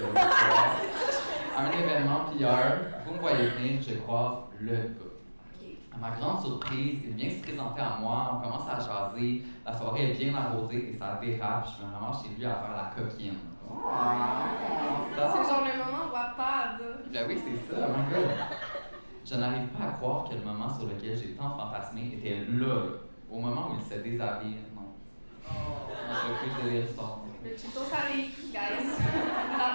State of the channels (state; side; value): inverted; both; correlation -1.00